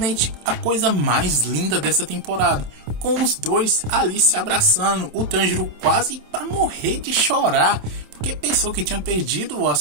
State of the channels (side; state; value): left; late; 27 ms